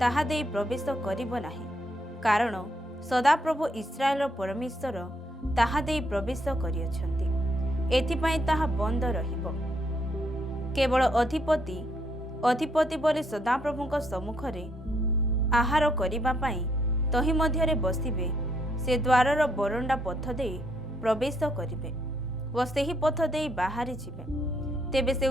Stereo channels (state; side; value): normal; both; correlation 0.73